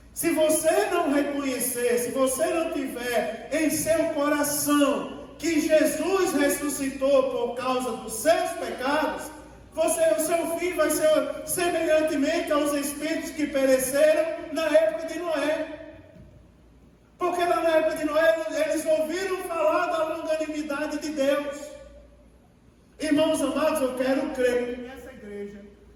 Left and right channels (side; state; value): both; identical; correlation 1.00